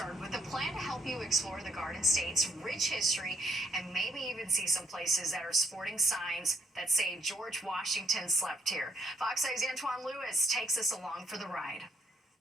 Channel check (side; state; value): both; normal; correlation 0.70